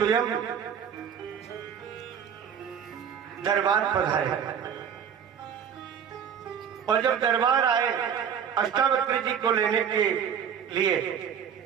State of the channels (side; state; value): left; quieter; 8.0 dB